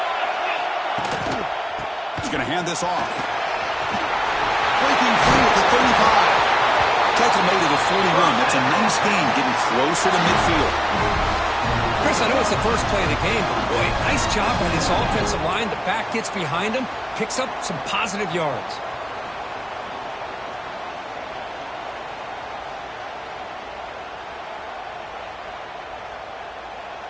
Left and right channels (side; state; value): both; identical; correlation 1.00